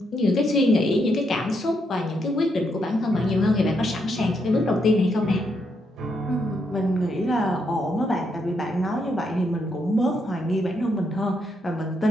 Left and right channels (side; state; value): both; normal; correlation 0.78